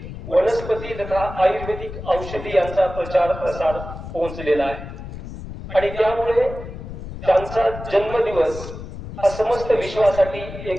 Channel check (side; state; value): left; noise; rumble, 11 dB below the sound